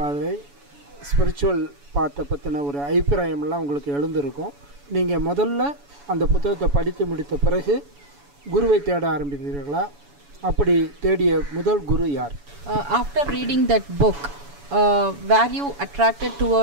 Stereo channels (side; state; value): left; late; 7.0 ms